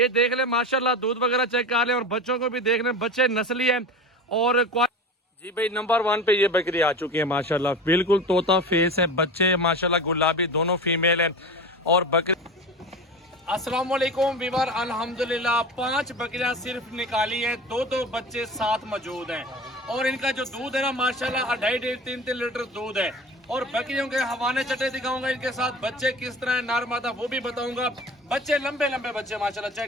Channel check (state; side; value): normal; both; correlation 0.31